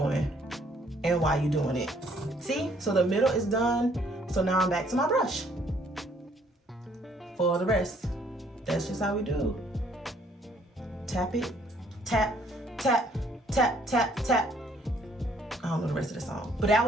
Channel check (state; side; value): normal; both; correlation 0.64